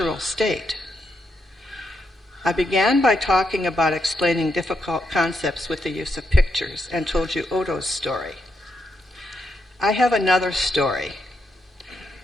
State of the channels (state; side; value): normal; both; correlation 0.80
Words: state. I began by talking about explaining difficult concepts with the use of pictures and told you Odo's story. I have another story,